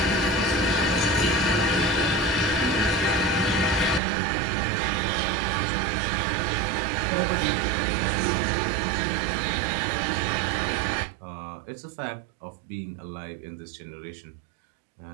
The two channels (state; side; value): drops out; left; at 4.0 s